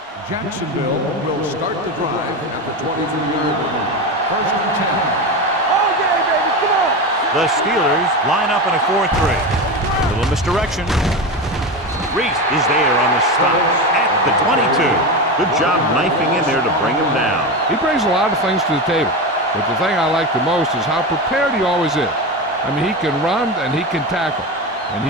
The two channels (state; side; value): normal; both; correlation 0.20